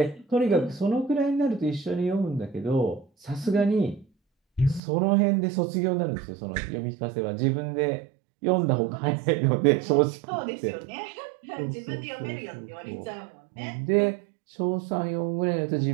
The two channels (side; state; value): left; drops out; at 4.8 s